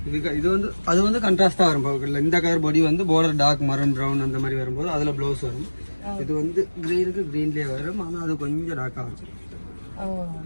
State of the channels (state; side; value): inverted; both; correlation -1.00